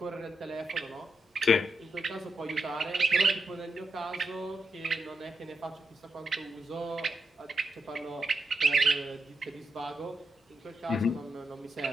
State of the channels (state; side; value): normal; both; correlation 0.84